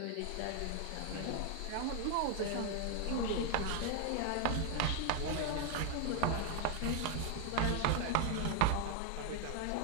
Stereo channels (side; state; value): both; different; correlation 0.00